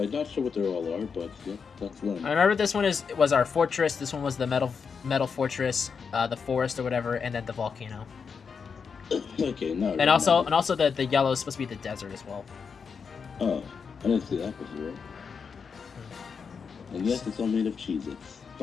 I'm not sure what they all are, but yeah, that's one. I remember this one was our fortress, this one was the metal fortress, the forest or whatever, and then the volcano. Okay, no. And also the yellow is supposed to be the desert as well. Oh, I didn't see that before. And yes, it's all made of Cheez-Its.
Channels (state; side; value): quieter; right; 5.9 dB